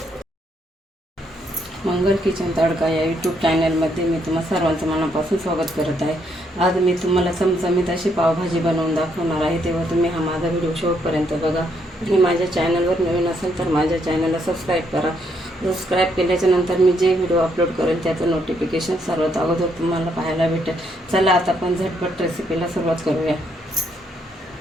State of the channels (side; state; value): both; normal; correlation 0.73